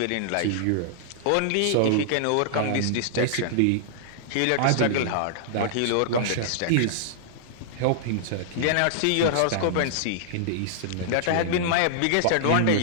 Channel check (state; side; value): different; both; correlation -0.01